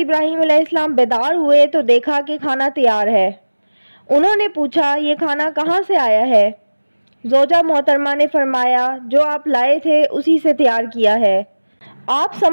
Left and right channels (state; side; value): inverted; both; correlation -1.00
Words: अलैहिस्सलाम बेदार हुए तो देखा कि खाना तैयार है। उन्होंने पूछा, ये खाना कहाँ से आया है? ज़ौजा मोहतरमा ने फरमाया, जो आप लाए थे उसी से तैयार किया है। आप